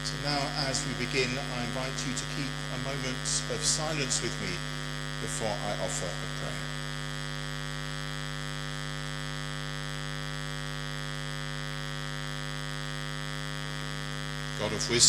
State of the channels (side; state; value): both; identical; correlation 1.00